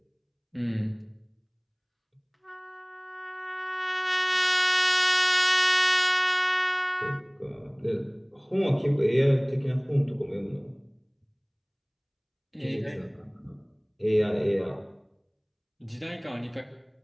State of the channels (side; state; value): both; identical; correlation 1.00